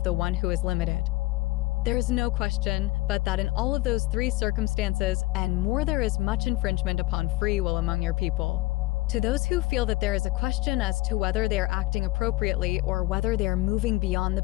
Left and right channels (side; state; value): right; quieter; 20.3 dB